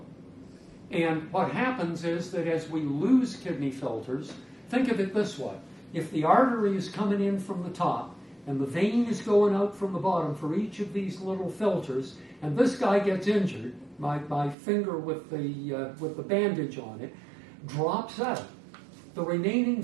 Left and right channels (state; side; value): drops out; left; at 14.6 s